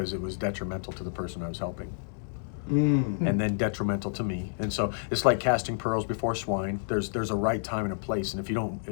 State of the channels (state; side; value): silent; right; 58 dB below the other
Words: it was detrimental to the person I was helping. And then detrimental to me. And so it's like casting pearls before swine. There's a right time and a place, and if you